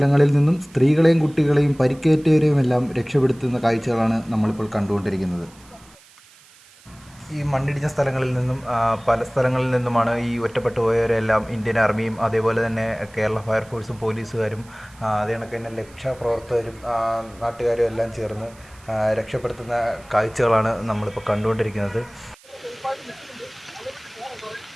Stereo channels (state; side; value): noise; right; hiss, 26 dB below the sound